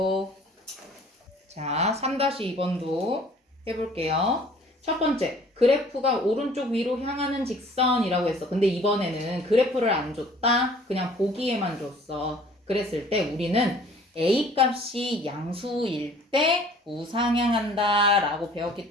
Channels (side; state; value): both; normal; correlation 0.53